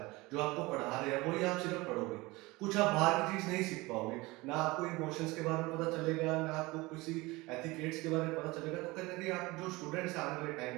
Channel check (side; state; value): left; quieter; 22.2 dB